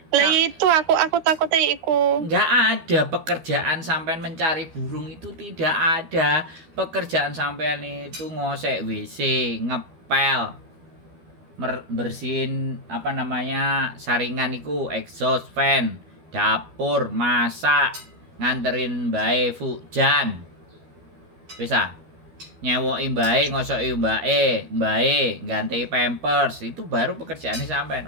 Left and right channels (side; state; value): left; late; 12 ms